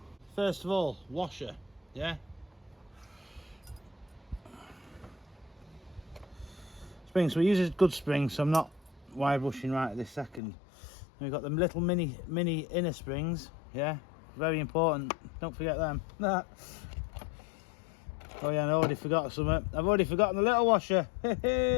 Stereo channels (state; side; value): drops out; right; at 10.4 s